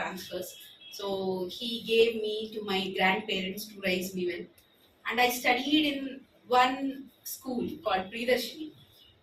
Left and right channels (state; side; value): identical; both; correlation 1.00